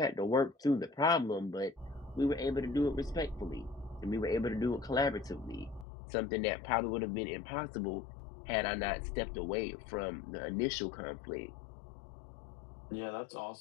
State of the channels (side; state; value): right; drops out; at 5.9 s